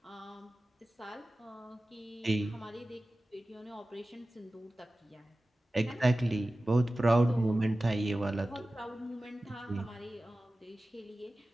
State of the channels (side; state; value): both; normal; correlation 0.96